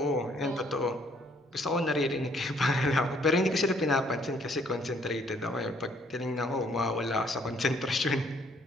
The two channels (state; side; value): normal; both; correlation 0.65